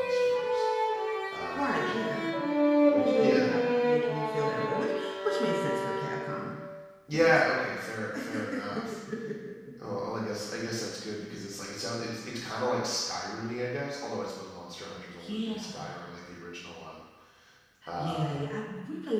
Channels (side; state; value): both; identical; correlation 1.00